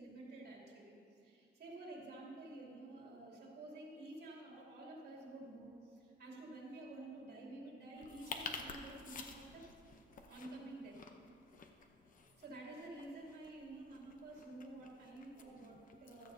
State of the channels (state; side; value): normal; both; correlation 0.42